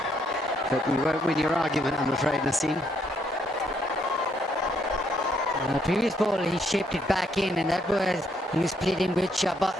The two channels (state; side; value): normal; both; correlation 0.72